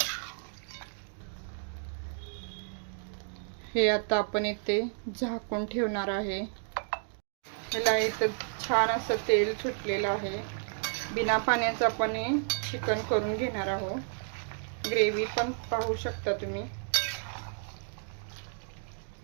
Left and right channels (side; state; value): left; silent; digital silence